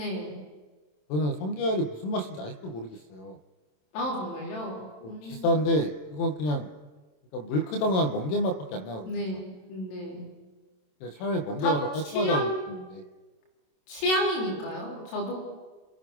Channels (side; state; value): right; late; 27 ms